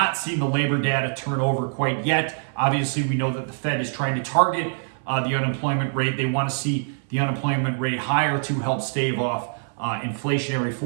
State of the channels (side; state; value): left; silent; 58 dB below the other